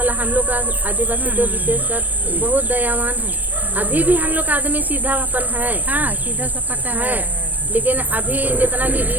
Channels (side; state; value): left; late; 0.084 ms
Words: हम लोग का आदिवासी तो विशेषकर बहुत दयावान है। अभी भी हम लोग का आदमी सीधापन है, हाँ सीधा सपाटा है। लेकिन अभी जितना भी